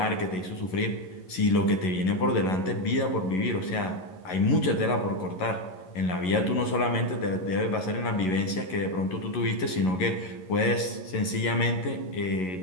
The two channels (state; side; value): late; right; 11 ms